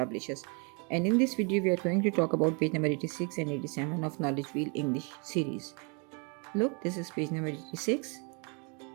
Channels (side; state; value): left; quieter; 34.5 dB